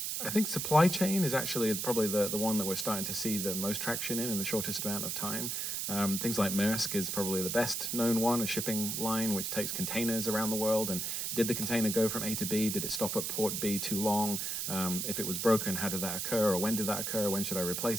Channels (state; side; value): noise; right; hiss, 2 dB below the sound